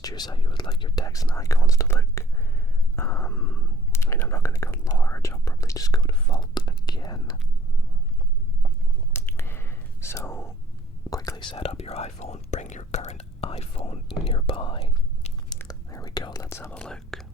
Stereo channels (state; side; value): normal; both; correlation 0.57